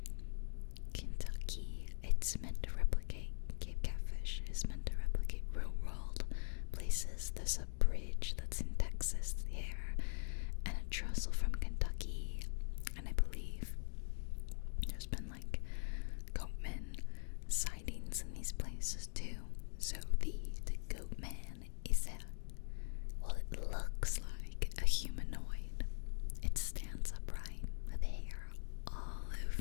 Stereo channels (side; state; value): right; silent; digital silence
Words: Kentucky. It's meant to replicate, Cape Catfish is meant to replicate real world places. There's a bridge that's in Texas there, and a trestle from Kentucky, and I believe there's been like goatman sightings in these places too. So the Goat Man is well, it looks like a humanoid. It stands upright with hair all